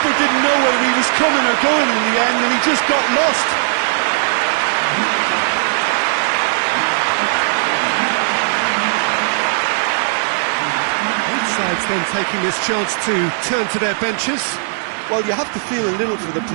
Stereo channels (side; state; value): left; silent; digital silence